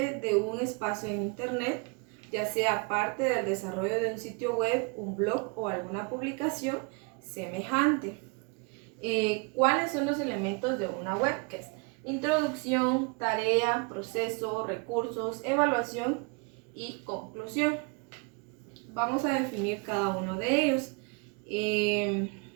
de un espacio en Internet, ya sea parte del desarrollo de un sitio web, un blog o alguna publicación semejante. ¿Cuáles son los elementos de una webquest? Introducción, tarea, proceso, recursos, evaluación y conclusión. Vamos a definir cada uno de ellos.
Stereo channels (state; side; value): quieter; left; 31.4 dB